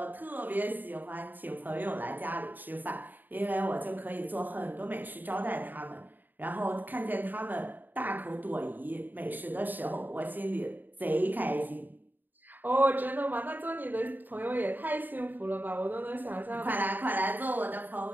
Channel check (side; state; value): left; late; 0.088 ms